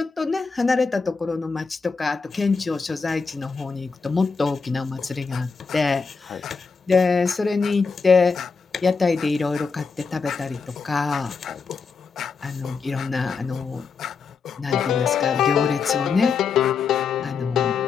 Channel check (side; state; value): right; quieter; 5.1 dB